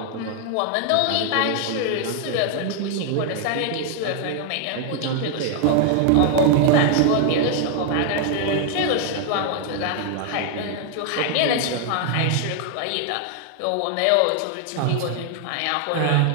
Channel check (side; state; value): both; different; correlation 0.00